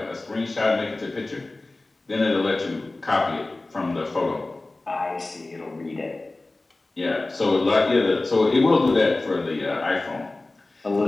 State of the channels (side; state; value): right; quieter; 3.0 dB